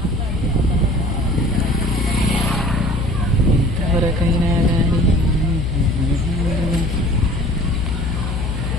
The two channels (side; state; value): left; noise; hum, 2 dB below the sound